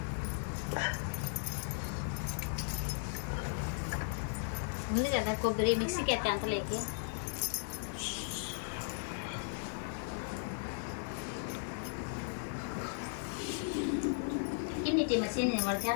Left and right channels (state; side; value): silent; right; 53 dB below the other